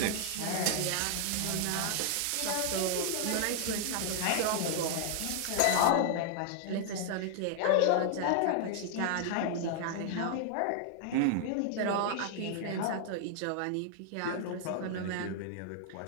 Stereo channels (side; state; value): both; different; correlation 0.00